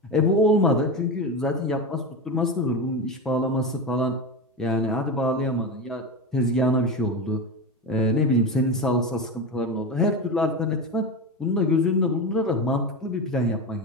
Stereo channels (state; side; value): normal; both; correlation 0.21